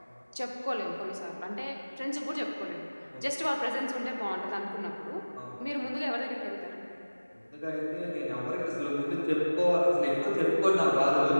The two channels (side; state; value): both; inverted; correlation -1.00